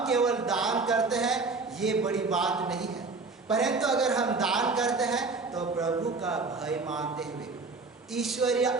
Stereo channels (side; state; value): left; quieter; 4.0 dB